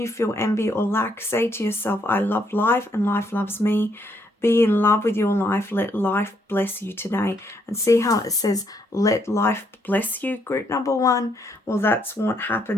feel envy or lack, say to yourself, I love life and life loves me. Be in love with your life. Let life bless you today. And see how it says, let life bless you, group number 1? Well, that's what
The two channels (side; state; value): both; normal; correlation 0.73